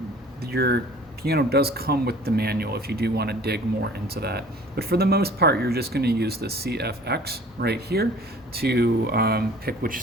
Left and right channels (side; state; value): both; normal; correlation 0.49